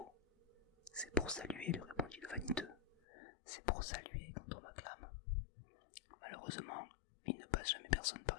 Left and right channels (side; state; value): right; drops out; at 3.0 s